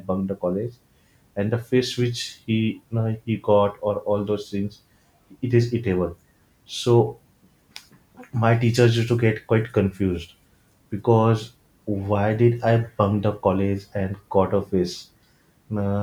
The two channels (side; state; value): both; identical; correlation 1.00